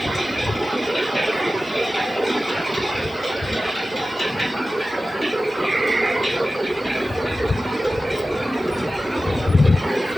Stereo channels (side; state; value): both; normal; correlation 0.95